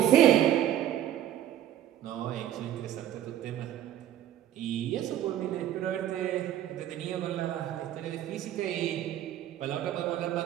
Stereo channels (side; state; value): left; quieter; 11.7 dB